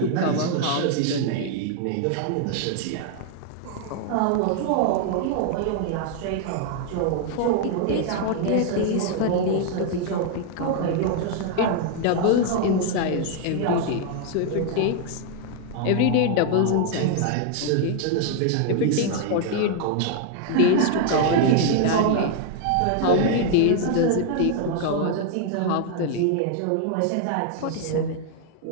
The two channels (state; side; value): different; both; correlation 0.00